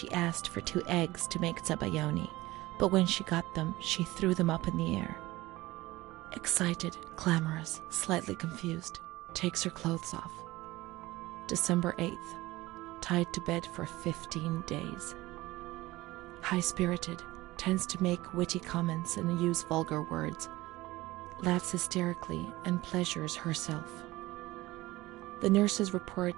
asked for 2 eggs to make zabayoni, but when she got them, she threw them up in the air. Excited, clamorous, slightly confused, takes her clothes off. December 8th, tied to bed for 15 days. High-spirited, tends to make witty comments and use vulgar words, laughs hysterically and pleasures herself. The nurses report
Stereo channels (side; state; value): left; quieter; 18.9 dB